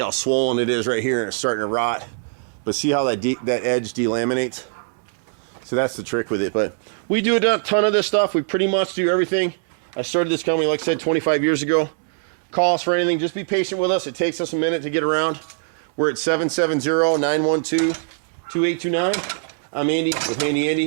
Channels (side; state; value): left; silent; digital silence